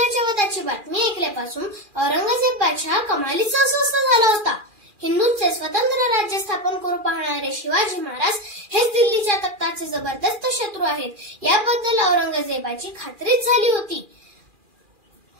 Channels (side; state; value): left; late; 2.4 ms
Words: वधाची बातमी ऐकल्यापासून औरंगजेबाच्या कमालीचा अस्वस्थ झाला होता। हिंदूंचे स्वतंत्र राज्य स्थापन करू पाहणारे शिवाजी महाराज हेच दिल्लीच्या तख्ताचे जबरदस्त शत्रू आहेत याबद्दल औरंगजेबाची खात्रीच झाली होती।